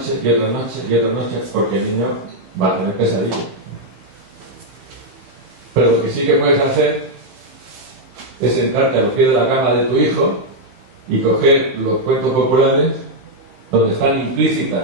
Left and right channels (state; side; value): late; left; 15 ms